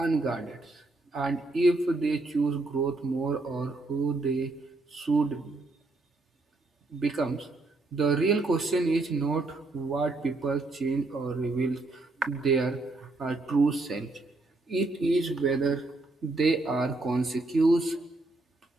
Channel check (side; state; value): left; quieter; 3.1 dB